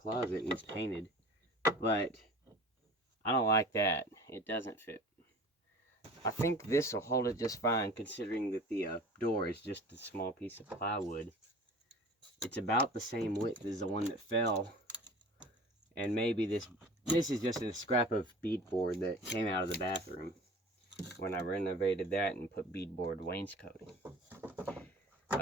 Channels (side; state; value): both; normal; correlation 0.41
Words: and it's painted. But I don't like that. It doesn't fit. I think this will hold it just fine, considering that the door is just a small piece of plywood. It's about the same width as the one that fell, and maybe this is just a scrap of beadboard that came out of the bathroom when I renovated that and put beadboard wainscoting